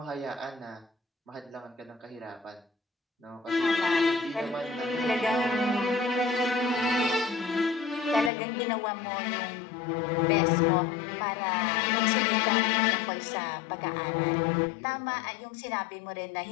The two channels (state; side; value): drops out; right; at 8.3 s